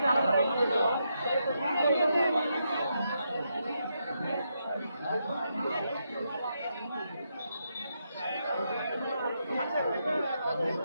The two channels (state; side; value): inverted; both; correlation -0.82